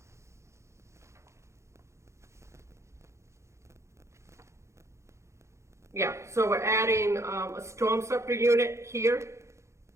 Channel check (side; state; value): left; late; 0.14 ms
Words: Yeah, so we're adding, a storm scepter unit here,